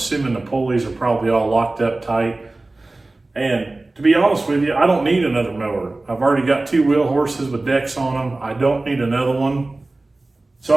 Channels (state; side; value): quieter; left; 3.0 dB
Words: the pulleys are probably all locked up tight. And to be honest with you, I don't need another mower. I've already got 2 wheel horses with decks on them. I don't need another one. So